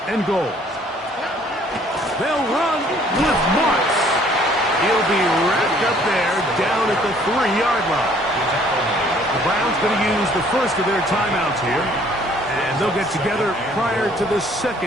and goal. They'll run with Marks. He'll be wrapped up there down at the 3-yard line. The Browns going to use the first of their timeouts here, and they'll get together prior to the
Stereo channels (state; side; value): normal; both; correlation 0.59